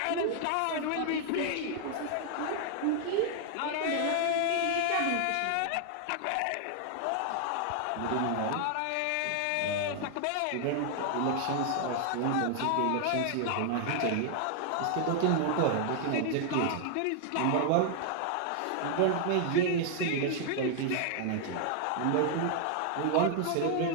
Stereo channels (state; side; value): different; both; correlation 0.00